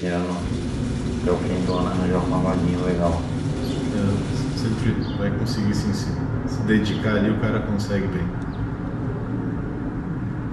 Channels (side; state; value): both; identical; correlation 1.00